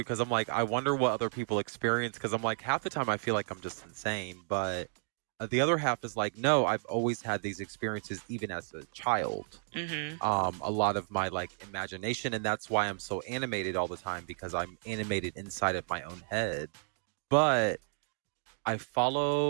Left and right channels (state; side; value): silent; left; digital silence